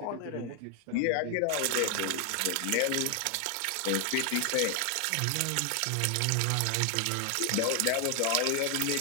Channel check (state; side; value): different; both; correlation 0.00